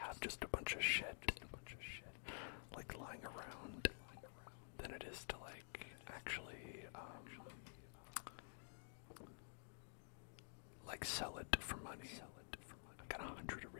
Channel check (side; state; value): right; silent; digital silence